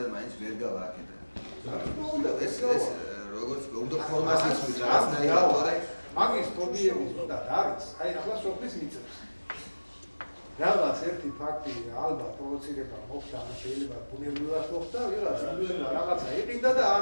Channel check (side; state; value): both; inverted; correlation -1.00